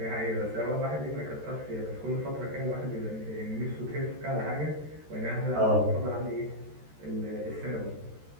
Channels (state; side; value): late; left; 13 ms